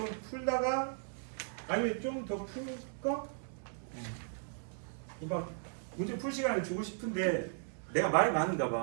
풀다가 아니면 좀 더 풀까? 막 문제 풀 시간을 주고 싶은데 내가 말이 많은가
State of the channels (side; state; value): left; silent; digital silence